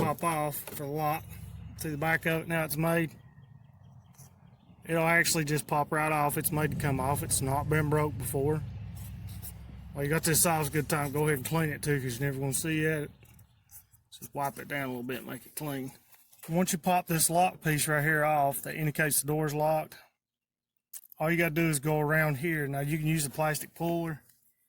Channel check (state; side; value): identical; both; correlation 1.00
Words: off for the lock. See the back of it now it's made? It'll actually just pop right off. It's made to come off. It's not been broke before. Well, you got this off, it's a good time. Go ahead and clean it too, because you're never going to see it. Just wipe it down a little bit and make it clean. Once you pop this lock piece right here off that indicates the door's locked, all you got to do is go around here. Now you can use a plastic puller